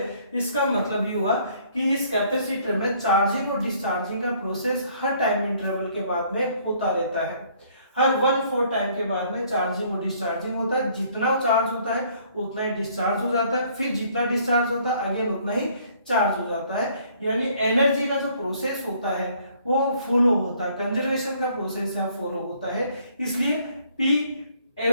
इसका मतलब ये हुआ कि इस कैपेसिटर में चार्जिंग और डिस्चार्जिंग का प्रोसेस हर टाइम इंटरवल के बाद में होता रहता है, हर 1/4 टाइम के बाद में चार्जिंग और डिस्चार्जिंग होता है, जितना चार्ज होता है उतना ही डिस्चार्ज हो जाता है, फिर जितना डिस्चार्ज होता है अगेन उतना ही चार्ज हो जाता है, यानी एनर्जी का जो प्रोसेस होता है वो फॉलो होता है, कंजर्वेशन का प्रोसेस है फॉलो होता है, इसलिए P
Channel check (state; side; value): inverted; both; correlation -0.62